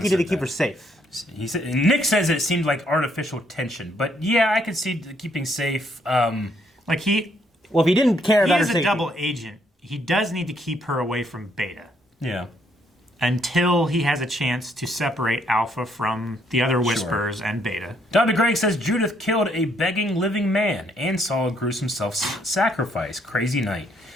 he did to said keep that. her safe. He said, Nick says it seemed like artificial tension, but yeah, I could see keeping safe. Like Well, if he didn't care he about her is a safety, double agent. He does need to keep her away from Beta Yeah. until he has a chance to separate Alpha from the other Whispers and Beta. Dr. Greg says Judith killed a begging living man and saw a gruesome self-sacrifice. Crazy night.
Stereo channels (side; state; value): both; normal; correlation 0.71